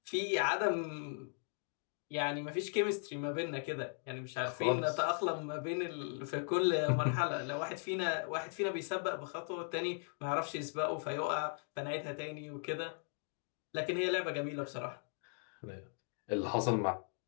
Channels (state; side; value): silent; right; 52 dB below the other